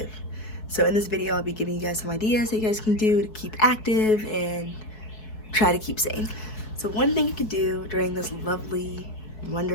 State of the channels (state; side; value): late; right; 4.6 ms